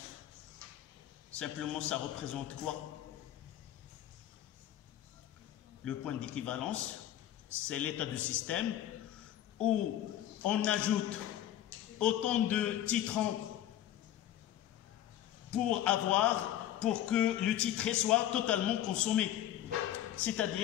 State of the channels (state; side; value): quieter; right; 12.1 dB